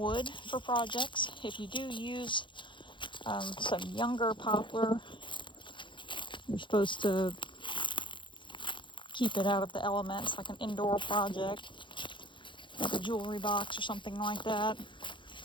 for projects. If you do use some younger poplar, you're supposed to keep it out of the elements, like an indoor project, like a jewelry box or something like that.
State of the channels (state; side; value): late; right; 0.23 ms